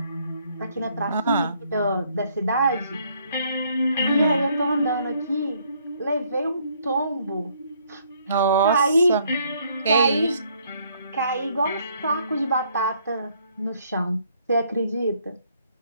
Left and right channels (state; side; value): inverted; both; correlation -0.67